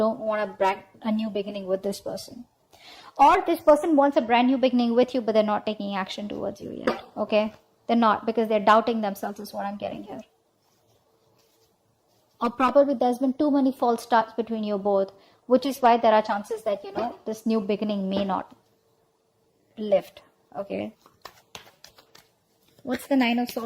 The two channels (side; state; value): both; identical; correlation 1.00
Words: want to brand a new beginning with this person. Or this person wants a brand new beginning with you, but they're not taking action towards you yet, okay? They're not, because they're doubting themselves is what I'm getting here. Or probably there's been too many false starts between you both, which is why there are chances that, you know, this new beginning may not lift, okay? What's the 9 of